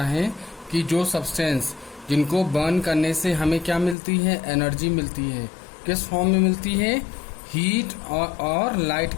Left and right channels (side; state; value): right; drops out; at 4.0 s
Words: है कि जो सब्सटेंस जिनको बर्न करने से हमें क्या मिलती है? एनर्जी मिलती है। किस फॉर्म में मिलती है? हीट और लाइट